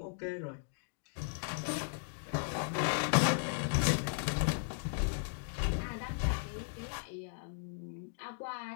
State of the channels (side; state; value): right; silent; digital silence